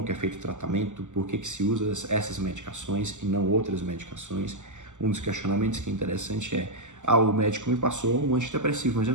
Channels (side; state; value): left; late; 0.84 ms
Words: que é feito o tratamento, por que se usa essas medicações e não outras medicações. Um dos questionamentos que é interessante é: o médico me passou um antidepressivo, mas eu